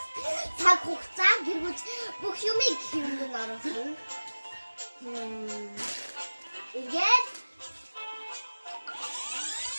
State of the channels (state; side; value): inverted; both; correlation -1.00